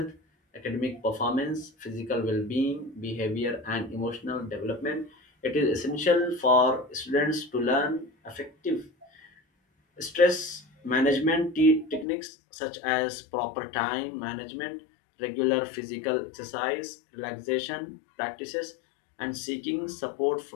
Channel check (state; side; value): drops out; right; at 12.1 s